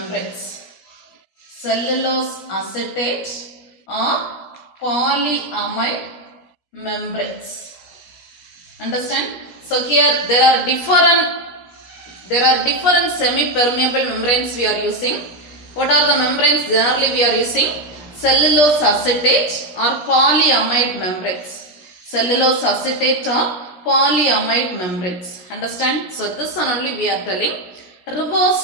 Cellulose acetate or polyamide membranes. Understand? So here there are different semi-permeable membranes we are using. What are the membranes generally we are using? Cellulose acetate or polyamide membranes. Cellulose acetate or polyamide membranes. Understand? So this one only we are telling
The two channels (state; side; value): late; right; 17 ms